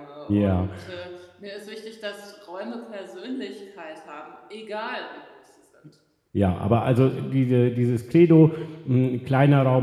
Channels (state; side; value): identical; both; correlation 1.00